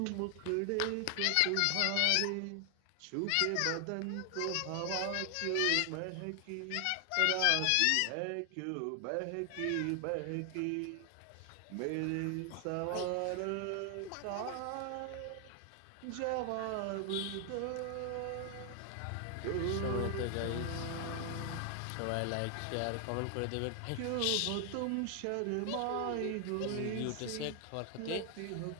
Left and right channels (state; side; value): different; both; correlation 0.00